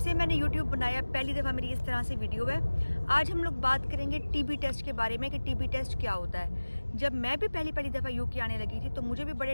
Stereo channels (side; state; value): both; inverted; correlation -1.00